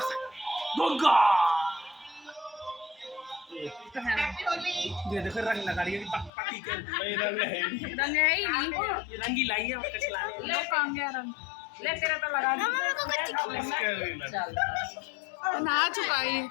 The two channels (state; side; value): drops out; right; at 6.3 s